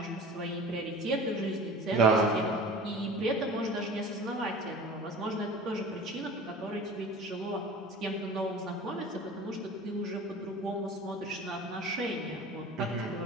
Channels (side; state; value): both; normal; correlation 0.40